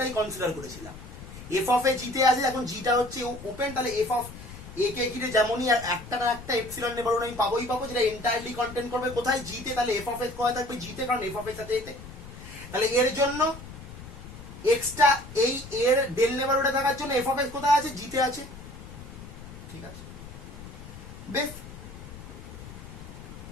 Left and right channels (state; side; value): noise; left; rumble, 14 dB below the sound